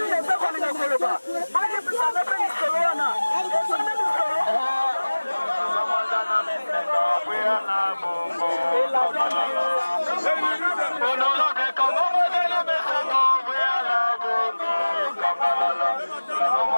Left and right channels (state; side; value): inverted; both; correlation -1.00